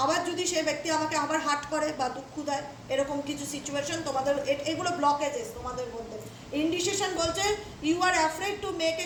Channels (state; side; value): identical; both; correlation 1.00